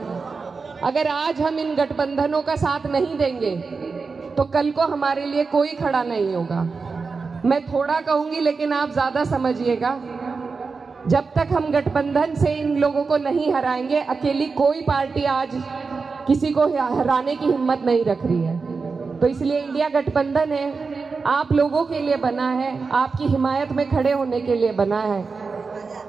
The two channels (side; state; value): left; quieter; 4.6 dB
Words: अगर आज हम इन गठबंधनों का साथ नहीं देंगे तो कल को हमारे लिए कोई खड़ा नहीं होगा। मैं थोड़ा कहूंगी लेकिन आप ज़्यादा समझिएगा। जब तक हम गठबंधन से इन लोगों को नहीं हराएंगे, अकेली कोई पार्टी आज किसी को हराने की हिम्मत नहीं रख रही है। तो इसलिए इंडिया गठबंधन है, आप लोगों के लिए बना है, आपकी हिमायत में खड़े होने के लिए बना है।